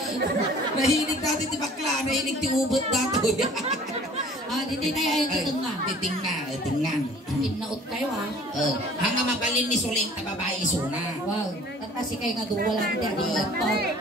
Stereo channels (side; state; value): both; normal; correlation 0.50